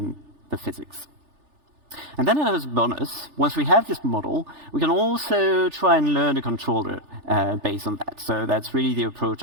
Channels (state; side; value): late; left; 3.4 ms